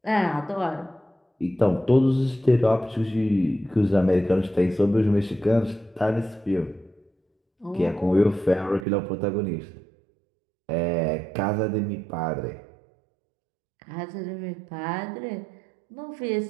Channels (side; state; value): left; drops out; at 8.8 s